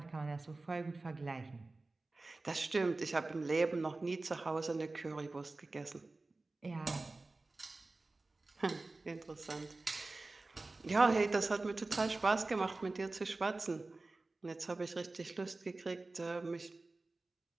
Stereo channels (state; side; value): quieter; left; 3.3 dB